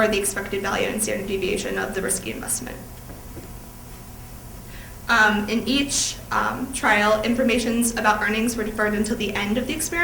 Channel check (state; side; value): identical; both; correlation 1.00